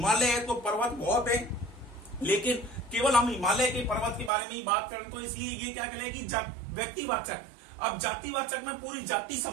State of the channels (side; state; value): left; drops out; at 4.3 s